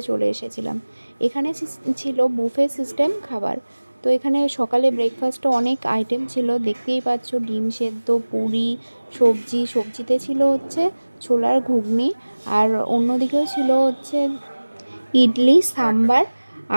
চলে এসেছিলাম। এখানে ছিল বুফে সিস্টেম খাবার। তো এখানে সকালে ব্রেকফাস্টে অনেক আইটেম ছিল, দেখতেই পাচ্ছ, ডিম সেদ্ধ, পুরি, সবজি, সবজিতে ছিল হচ্ছে ছোলার ঘুগনি, আর অন্যদিকেও ছিল হচ্ছে ইডলি, সাম্বার,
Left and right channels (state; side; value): inverted; both; correlation -1.00